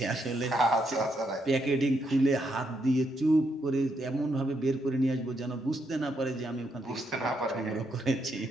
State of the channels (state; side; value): normal; both; correlation 0.78